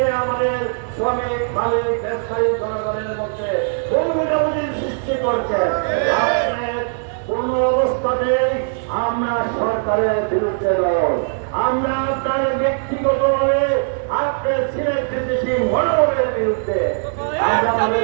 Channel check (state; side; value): silent; left; digital silence